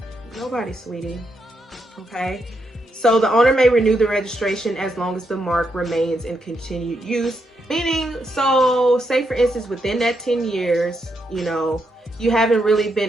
Nobody, sweetie. Okay, so the owner may renew the registration as long as the mark remains in continued use. Meaning, so say for instance, within that 10 years, you know, you haven't really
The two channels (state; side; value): normal; both; correlation 0.81